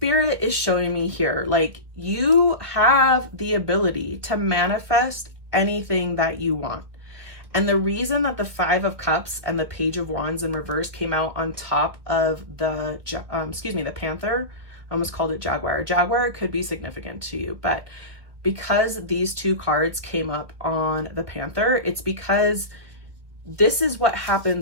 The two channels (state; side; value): late; left; 1.5 ms